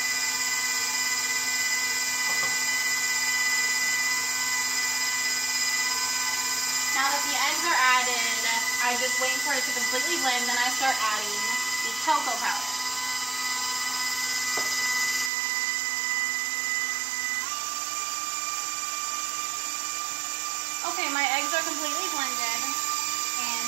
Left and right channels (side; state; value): left; drops out; at 15.3 s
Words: Now that the eggs are added, I just wait for it to completely blend, then I start adding the cocoa powder. Okay, my eggs are completely blended, and